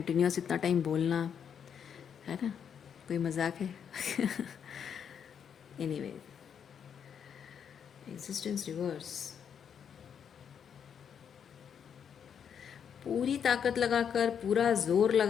इतना टाइम बोलना, है ना, कोई मजाक है। एनीवे, एग्जिस्टेंस रिवर्स, पूरी ताकत लगाकर, पूरा जोर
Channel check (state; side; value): quieter; right; 7.8 dB